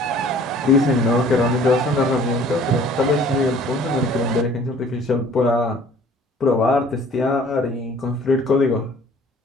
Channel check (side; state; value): both; normal; correlation 0.52